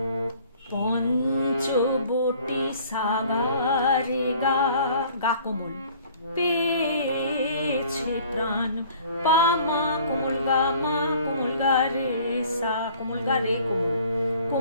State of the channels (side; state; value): both; inverted; correlation -0.53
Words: পঞ্চবটি সাগারে গা, গা কোমল, পেয়েছে প্রাণ, পা মা কোমল গা মা, কোমল গা রে সা, কোমল গা রে কোমল,